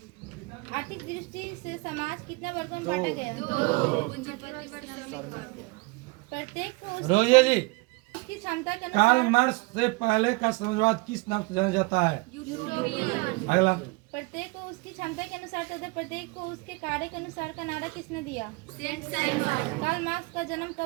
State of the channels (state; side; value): quieter; left; 26.6 dB